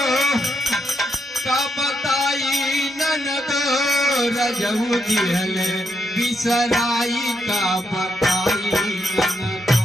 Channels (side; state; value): both; normal; correlation 0.79